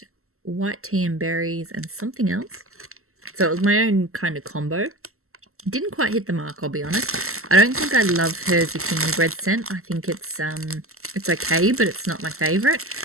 white tea and berries, and something else. So it was my own kind of combo. Didn't quite hit the mark, I'll be honest. I don't think I love her zucchini bread scent. I think it's okay, but it's not my favorite.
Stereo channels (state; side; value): late; left; 0.63 ms